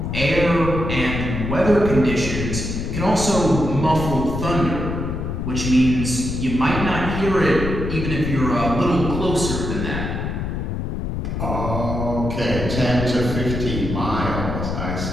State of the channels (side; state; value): left; noise; rumble, 3 dB below the sound